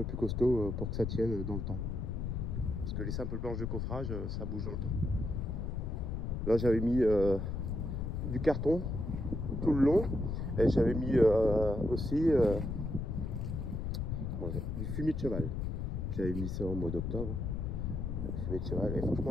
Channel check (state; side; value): noise; left; rumble, 2 dB below the sound